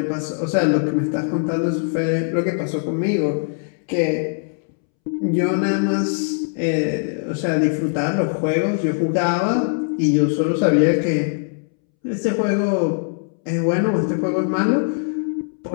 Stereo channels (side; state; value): right; silent; 65 dB below the other